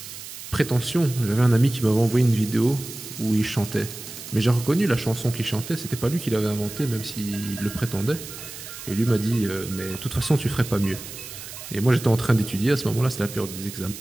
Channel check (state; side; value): noise; right; hiss, 12 dB below the sound